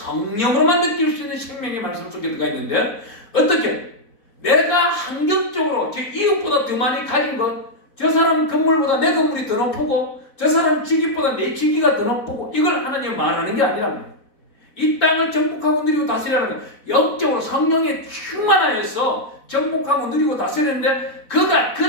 느낄 수 있는 생명의 말씀 속에 들어가 있는데 어떻게? 내가 환경적으로 제 이웃보다 더 많이 가진 것, 저 사람 건물보다 내 건물이 더 높고 저 사람 직위보다 내 직위가 더 높고 이걸 하나님 말하는 게 아니랍니다. 이 땅을 정복하고 누리고 다스리라는 건 영적으로 성령에 충만하여서 정복하고 누리고 다스리는데 그가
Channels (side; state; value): right; late; 4.0 ms